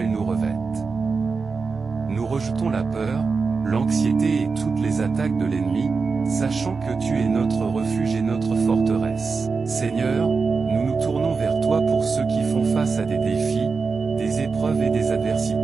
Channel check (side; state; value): left; quieter; 4.7 dB